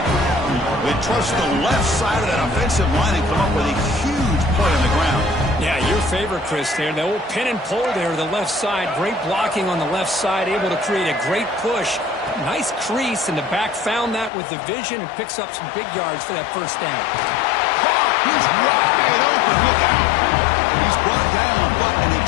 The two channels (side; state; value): right; drops out; at 14.3 s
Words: They trust the left side of that offensive line and come up with a huge play on the ground. Yeah, your favorite, Chris, there. The old pin and pull there, the left side. Great blocking on the left side, able to create a great push. Nice crease, and the back found that with the vision and picks up some big yards for that first down. He's wide open. Look out. He's brought down, but an